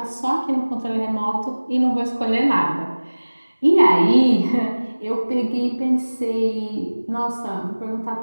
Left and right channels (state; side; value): inverted; both; correlation -1.00